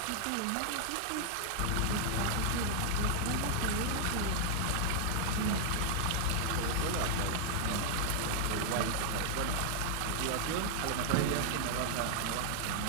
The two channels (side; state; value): both; different; correlation -0.01